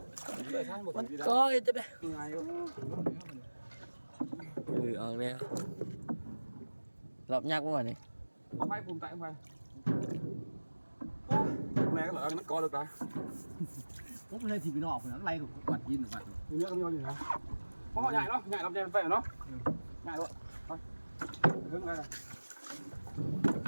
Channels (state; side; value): inverted; both; correlation -1.00